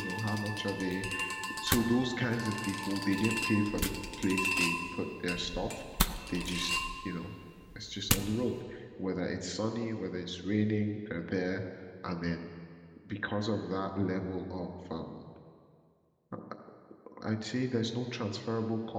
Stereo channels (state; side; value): identical; both; correlation 1.00